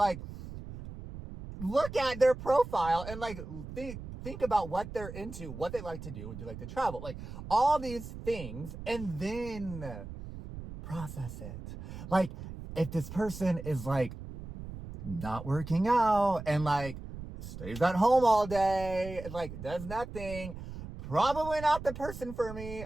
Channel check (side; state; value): right; noise; rumble, 11 dB below the sound